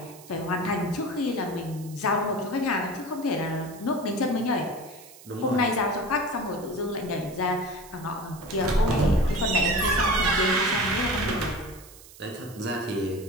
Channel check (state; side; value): noise; right; hiss, 20 dB below the sound